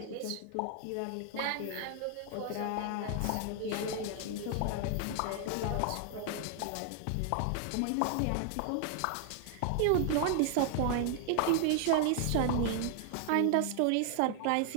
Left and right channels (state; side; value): different; both; correlation 0.00